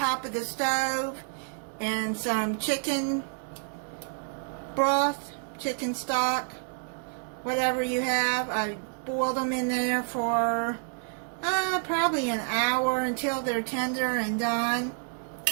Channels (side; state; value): left; silent; 59 dB below the other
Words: of the stove and some chicken broth, chicken stock, whatever you have. I boiled them in there for probably an hour until they're tender and done.